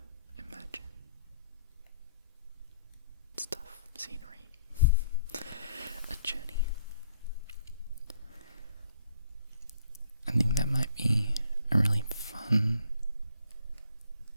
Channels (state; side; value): inverted; both; correlation -0.67